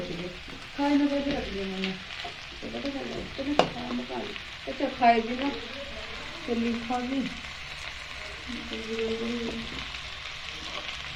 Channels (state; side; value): identical; both; correlation 1.00